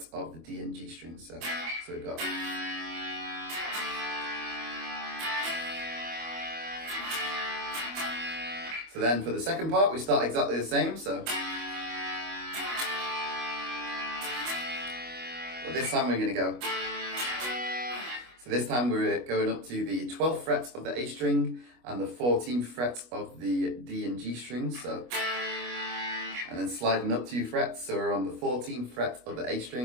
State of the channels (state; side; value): late; left; 25 ms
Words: of the D and G strings. So we've got. So then for the second part, we start exactly the same. So, but this time we're going to go. So this time we're going up to the 12th fret of the A string and the 14th fret of the D and G strings. So, and then sliding up 2 frets. So we're on the 14th fret of the A